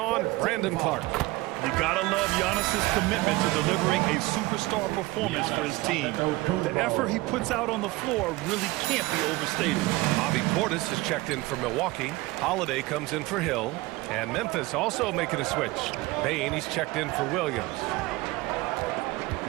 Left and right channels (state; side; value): quieter; left; 20.6 dB